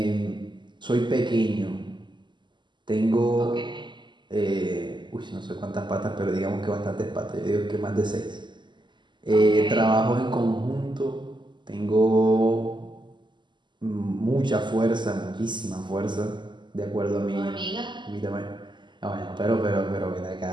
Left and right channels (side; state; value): left; late; 0.22 ms